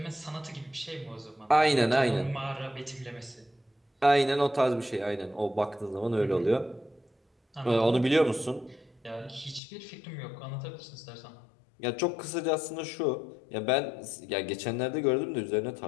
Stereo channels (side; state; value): right; drops out; at 9.6 s